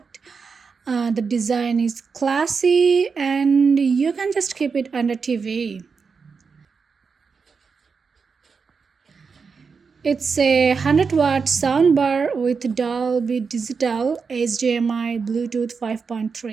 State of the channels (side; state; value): left; quieter; 5.3 dB